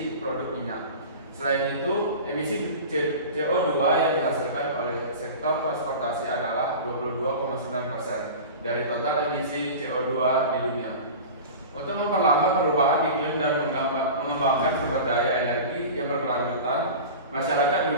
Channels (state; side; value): inverted; both; correlation -0.34